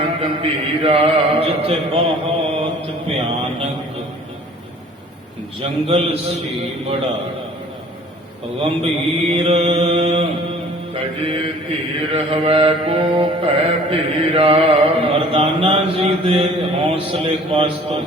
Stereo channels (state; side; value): normal; both; correlation 0.50